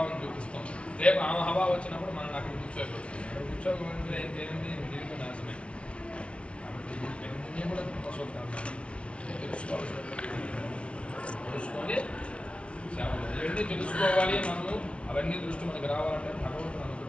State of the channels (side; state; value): right; late; 0.060 ms